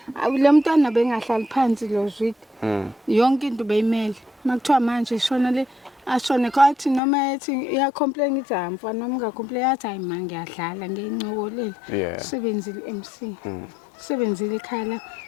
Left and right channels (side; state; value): right; drops out; at 7.0 s